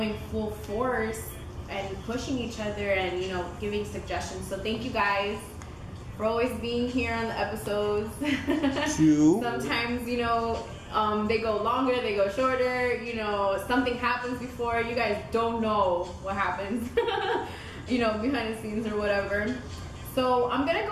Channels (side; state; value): both; identical; correlation 1.00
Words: full force and pushing each other and, you know, giving suggestions. So thank you guys for always being here on the episodes. Sometimes, you know, they go longer, they go shorter, you know, something happens before, you guys don't know what happens, you know, behind the scenes or whatever. So I'm gonna